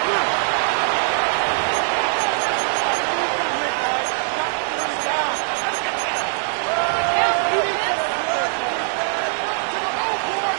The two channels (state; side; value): silent; left; digital silence